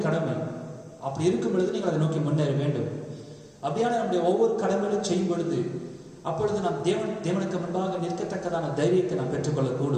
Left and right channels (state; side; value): identical; both; correlation 1.00